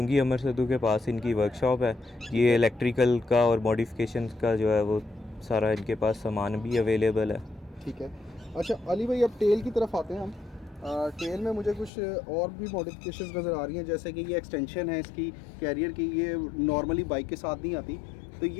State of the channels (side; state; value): right; drops out; at 11.9 s